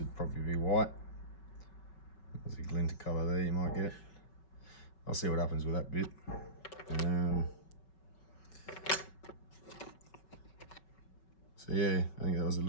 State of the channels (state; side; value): late; right; 5.3 ms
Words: probably be white. There's a glint of colour there you might get. I'll see what happens with that bit. So yeah, I think that was a